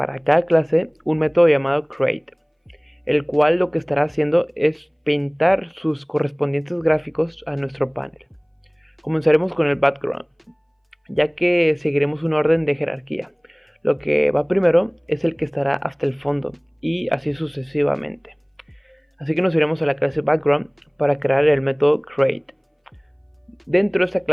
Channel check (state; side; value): identical; both; correlation 1.00